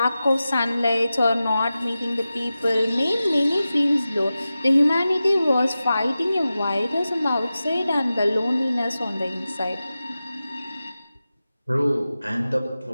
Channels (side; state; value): both; inverted; correlation -0.94